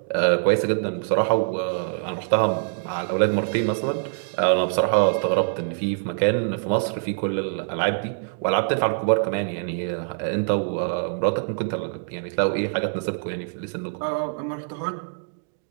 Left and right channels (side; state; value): left; silent; digital silence